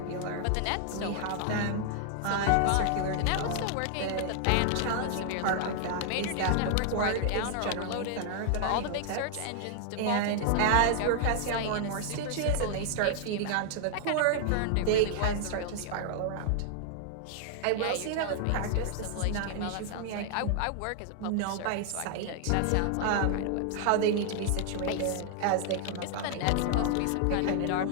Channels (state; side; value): different; both; correlation 0.00